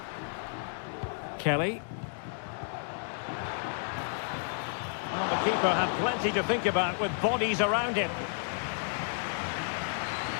Kelly. Well, the keeper had plenty to think about with bodies around him.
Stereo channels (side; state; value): right; silent; digital silence